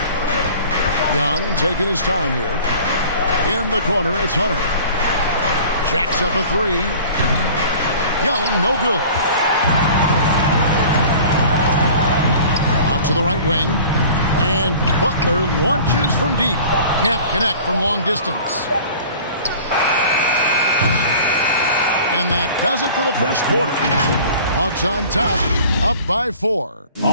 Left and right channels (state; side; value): inverted; both; correlation -0.44